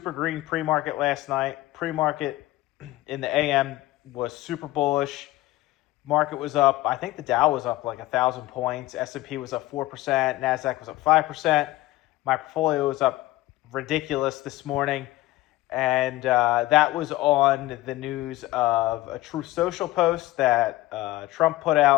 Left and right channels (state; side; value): quieter; right; 17.3 dB